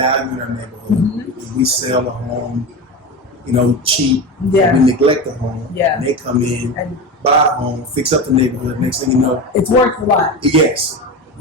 in our neighborhood, if we sell a home, cheap, Yeah. we neglect the home, Yeah. and they come in, and buy a home, fix up the neighborhood, next thing you know, it's worth a lot. yes.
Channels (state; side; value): normal; both; correlation 0.24